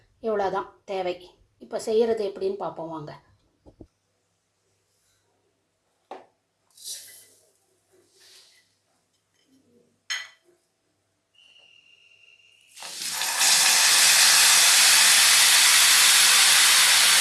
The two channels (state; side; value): identical; both; correlation 1.00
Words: இவ்வளோதான் தேவை. இப்போ செய்கிறது எப்படின்னு பார்ப்போம் வாங்க.